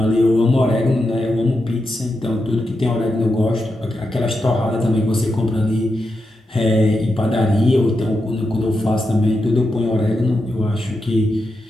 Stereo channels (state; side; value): normal; both; correlation 0.87